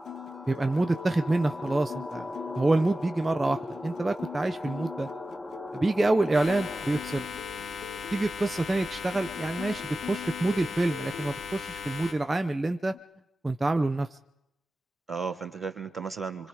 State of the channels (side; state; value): both; normal; correlation 0.95